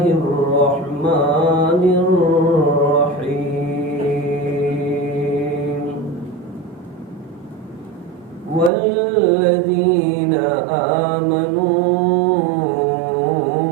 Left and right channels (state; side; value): drops out; left; at 8.7 s